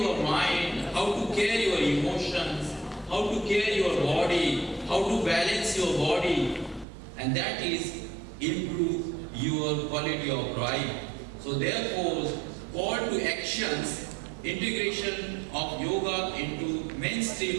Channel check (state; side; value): drops out; left; at 6.9 s